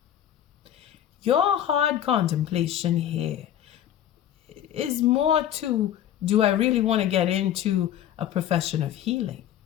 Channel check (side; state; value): right; quieter; 11.1 dB